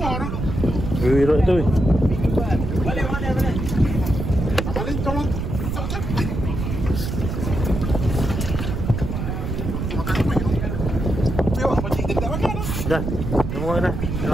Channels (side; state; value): right; noise; rumble, 3 dB below the sound